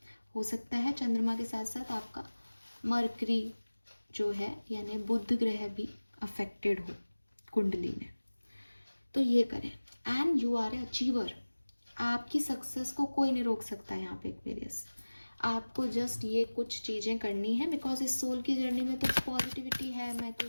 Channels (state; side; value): inverted; both; correlation -1.00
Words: हो सकता है चंद्रमा के साथ साथ आपका मरकरी जो है यानी बुध ग्रह भी अफेक्टेड हो कुंडली में, तो ये करें। And you are a achiever, आपकी सक्सेस को कोई नहीं रोक सकता यहाँ पे एक्वेरियस। आपको जस्ट ये कुछ चीज़ें करनी है, बिकॉज इस सोल की जर्नी में तो पॉजिटिविटी है, मैं तो